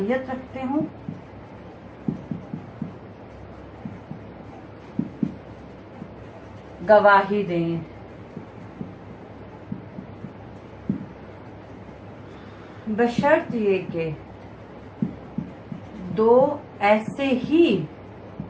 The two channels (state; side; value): identical; both; correlation 1.00